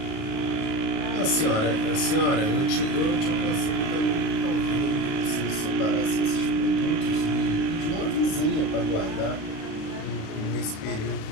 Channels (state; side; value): late; right; 37 ms